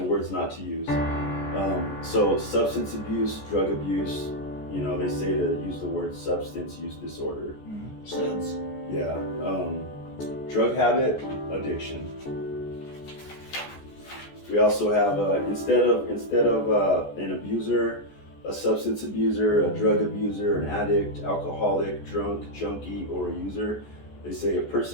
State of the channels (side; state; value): right; late; 14 ms